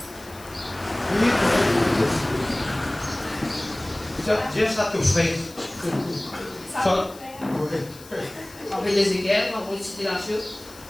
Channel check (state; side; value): noise; left; hiss, 20 dB below the sound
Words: Oui. Dieu, ça te ferait. Ça. Oui. On fait les équerres, on va citer la chose.